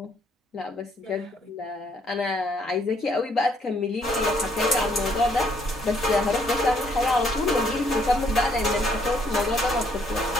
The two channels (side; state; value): both; normal; correlation 0.68